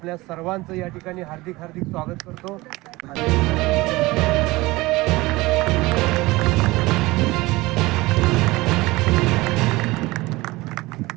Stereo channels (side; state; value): left; quieter; 20.7 dB